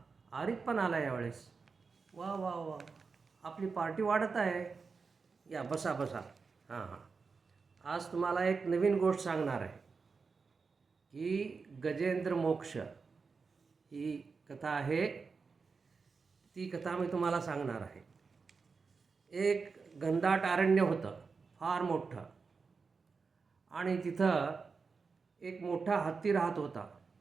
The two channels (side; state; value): left; quieter; 4.9 dB